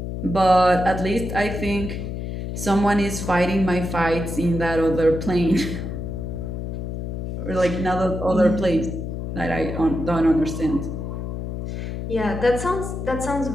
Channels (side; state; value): left; noise; hum, 5 dB below the sound